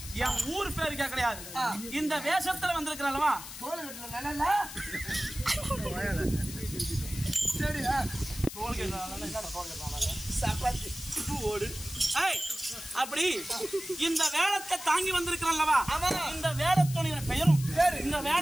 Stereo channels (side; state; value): left; noise; hiss, 11 dB below the sound